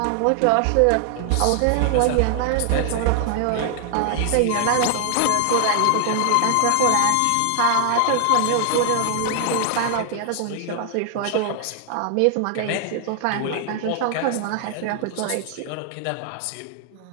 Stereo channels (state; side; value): different; both; correlation 0.00